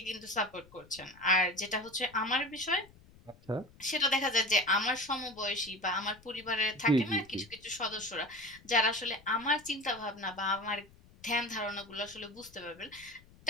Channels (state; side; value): noise; left; rumble, 25 dB below the sound